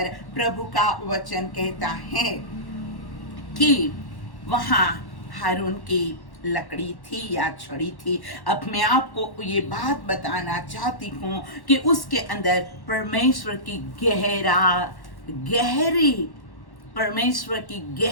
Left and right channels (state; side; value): late; right; 1.1 ms